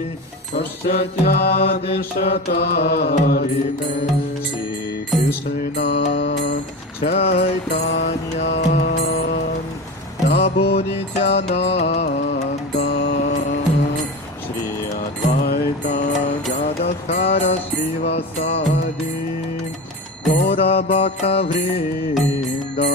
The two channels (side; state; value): both; normal; correlation 0.27